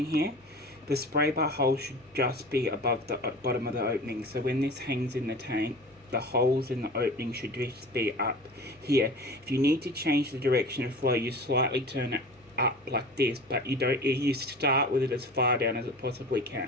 here? The spray bar hole should just be above the bottom of the opening. So when this hangs in the tank, the holes in the opening should just be up here. If you need to change the direction of flow, you slightly turn it up like this, but you don't. You start with it as far down as it possibly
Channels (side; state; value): both; normal; correlation 0.37